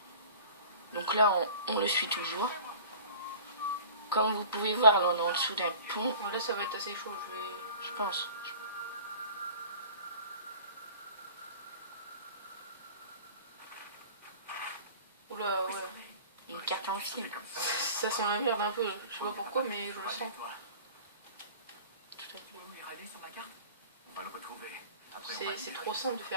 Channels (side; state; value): both; inverted; correlation -0.44